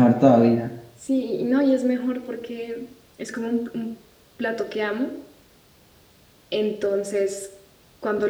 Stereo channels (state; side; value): identical; both; correlation 1.00